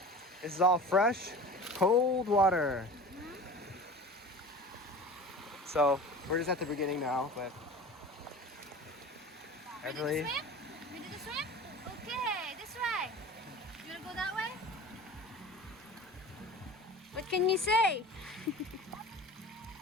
This is all fresh, cold water. So we're just at the beginning now, but Everly. Ready to swim? Ready to swim? Okay, this way. You wanna go that way? What can you say?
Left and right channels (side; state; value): both; normal; correlation 0.38